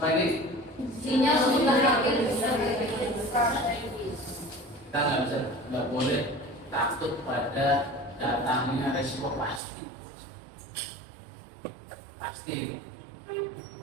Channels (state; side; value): drops out; left; at 9.6 s